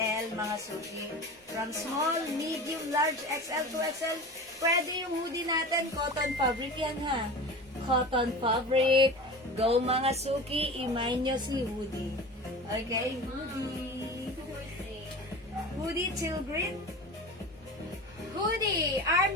mga suki. From small, medium, large, XL, 2XL. Pwede yung hoodie natin, cotton fabric yan ha. Cotton fabric. Go mga suki, imay nyo si hoodie. Okay, hoodie. Hoodie teal green. Hoodie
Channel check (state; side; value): normal; both; correlation 0.33